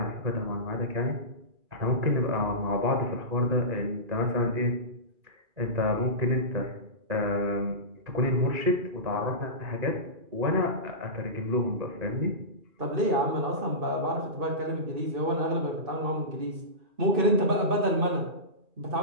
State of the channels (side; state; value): left; late; 2.4 ms